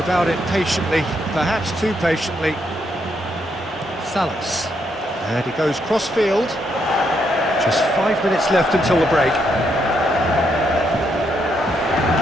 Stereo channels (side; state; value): both; normal; correlation 0.77